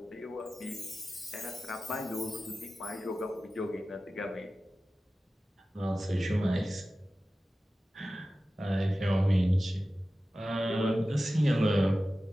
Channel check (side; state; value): both; normal; correlation 0.95